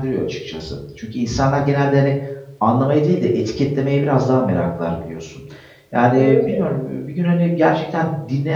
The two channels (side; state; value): both; identical; correlation 1.00